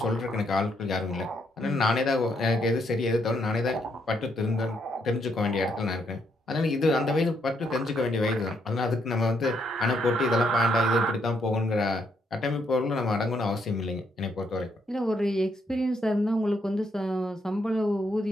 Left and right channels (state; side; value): normal; both; correlation 0.75